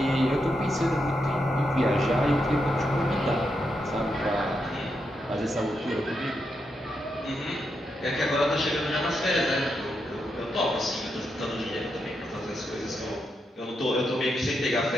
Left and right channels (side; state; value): both; normal; correlation 0.83